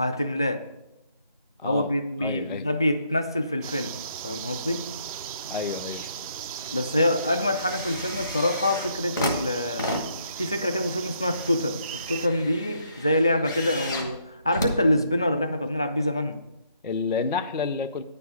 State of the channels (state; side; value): inverted; both; correlation -0.70